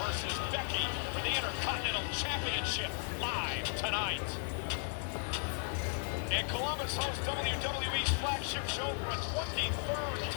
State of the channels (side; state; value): right; silent; 54 dB below the other